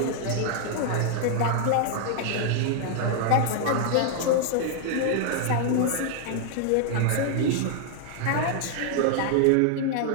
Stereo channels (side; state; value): both; different; correlation -0.01